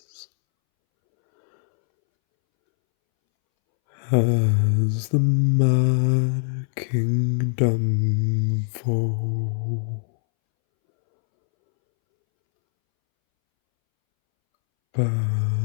has the mad kingdom fall.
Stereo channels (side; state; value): right; silent; 64 dB below the other